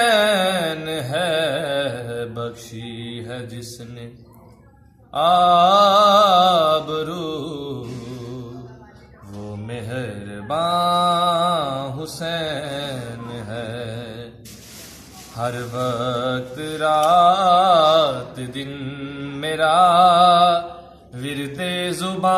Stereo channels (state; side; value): identical; both; correlation 1.00